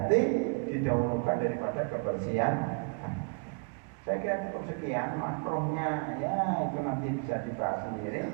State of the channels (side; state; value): left; quieter; 39.1 dB